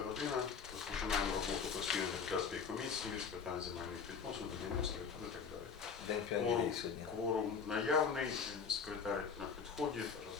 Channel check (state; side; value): quieter; right; 6.1 dB